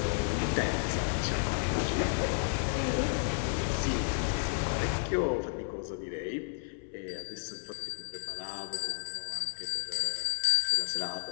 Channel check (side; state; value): right; silent; 56 dB below the other